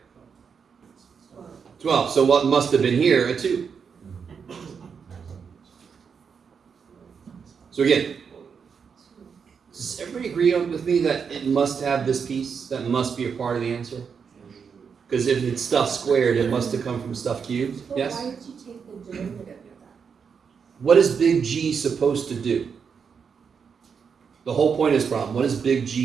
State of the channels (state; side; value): quieter; left; 6.3 dB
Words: 12. So what must have been here? A 2. So again, does everybody agree with me that it must have this piece? That must be a part of the answer? Because if it's stuff squared, it must have come from stuff cubed. But Yes? why did you take the derivative of that? What is big G supposed to do? The whole point of this problem. What is big